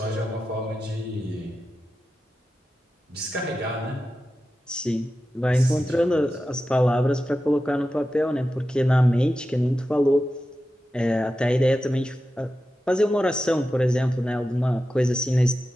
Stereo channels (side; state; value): both; normal; correlation 0.92